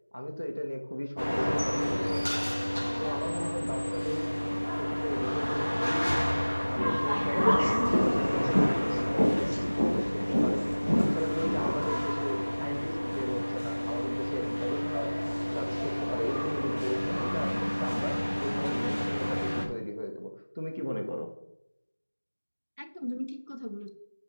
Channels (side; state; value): both; inverted; correlation -1.00